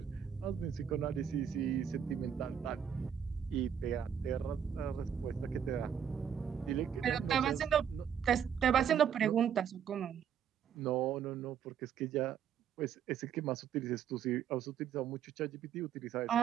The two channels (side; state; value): left; quieter; 8.4 dB